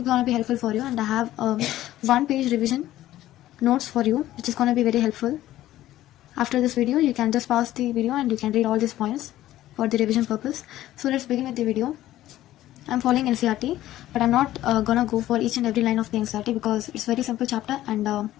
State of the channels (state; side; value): quieter; right; 14.3 dB